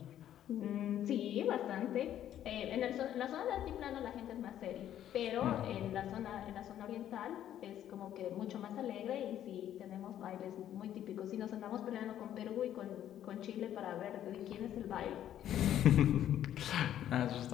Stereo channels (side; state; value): right; quieter; 11.2 dB